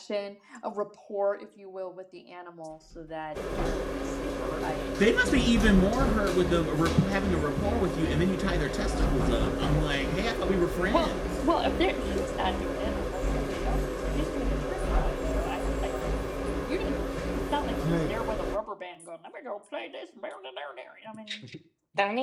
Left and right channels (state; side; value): identical; both; correlation 1.00